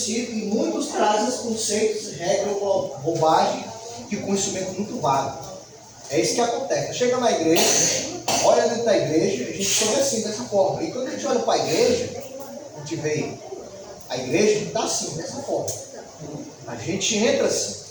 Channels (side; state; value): both; identical; correlation 1.00